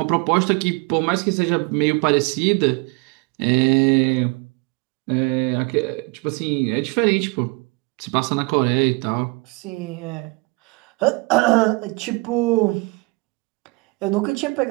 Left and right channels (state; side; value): quieter; left; 27.9 dB